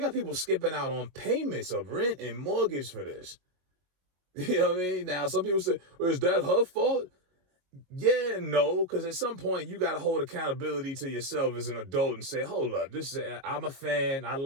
got people skipping out on payments of rent and mortgage for this. You know what I mean? Now, some people say, well, is that her fault? Yeah, no, because at some point you got to hold accountability to yourself as an adult and say, hold up, I'm a fan, I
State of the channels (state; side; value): late; left; 22 ms